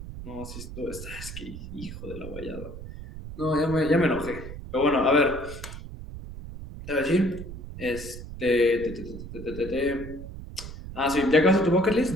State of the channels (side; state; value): right; noise; rumble, 11 dB below the sound